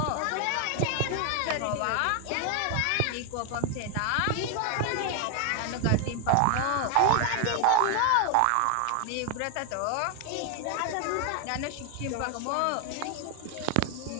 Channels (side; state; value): both; different; correlation 0.01